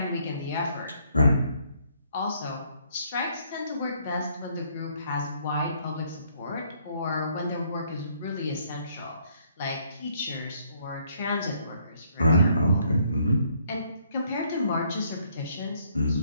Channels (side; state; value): both; inverted; correlation -0.67